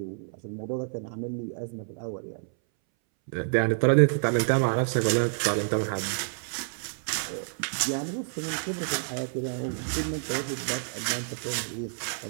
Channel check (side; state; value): left; silent; 59 dB below the other